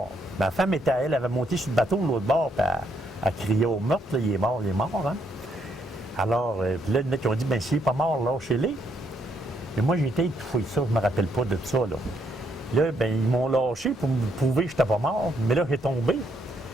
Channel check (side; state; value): both; normal; correlation 0.74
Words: Ma femme elle avait monté sur le bateau de l'autre bord, puis elle criait au meurtre, là, il est mort, hein. Alors, puis là, il y en a qui ont dit, bien, s'il n'est pas mort, lâchez-les. Mais moi, j'ai été étouffé, ça, je ne me rappelle pas de ça, là. Là, bien, ils m'ont lâché pour me prouver que je n'étais pas mort, mais là, j'ai tombé.